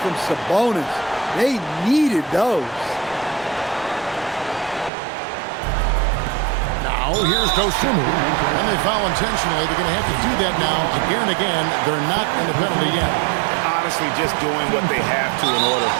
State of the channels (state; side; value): drops out; left; at 4.9 s